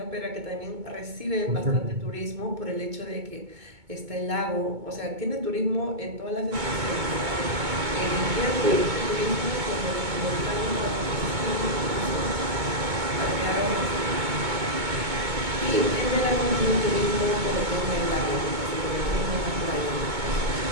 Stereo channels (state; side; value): late; left; 2.2 ms